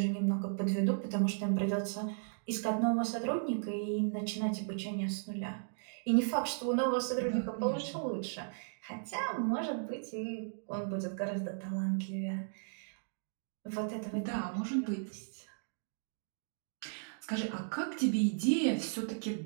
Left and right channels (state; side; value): silent; left; digital silence